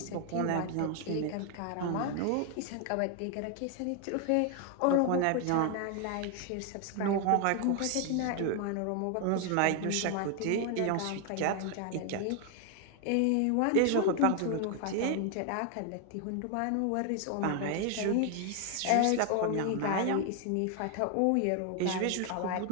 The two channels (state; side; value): different; both; correlation 0.00